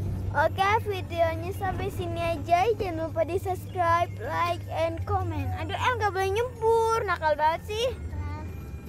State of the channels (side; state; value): both; identical; correlation 1.00